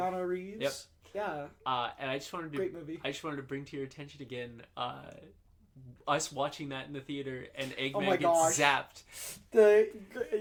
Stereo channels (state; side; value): identical; both; correlation 1.00